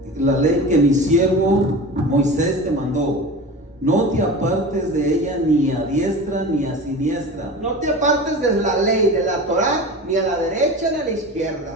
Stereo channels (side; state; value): both; normal; correlation 0.32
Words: la ley que mi siervo Moisés te mandó, no te apartes de ella ni a diestra ni a siniestra. No te apartes de la ley, de la Torá, ni a la derecha ni a la